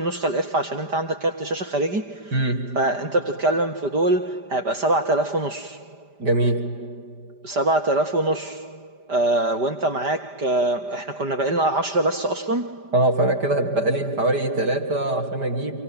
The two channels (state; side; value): late; left; 5.0 ms